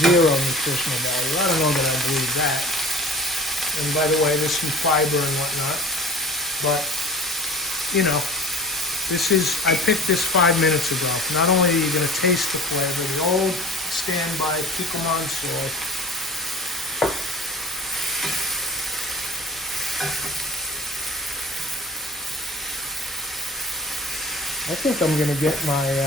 zero nutritional value. I don't know that I believe that. And by the way, there's some fiber and whatnot. But, you know, I picked this 5 minutes ago. Not only are you going to taste the flavor, the old standby Kikkoman salt. I think I'm going to get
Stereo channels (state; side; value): normal; both; correlation 0.40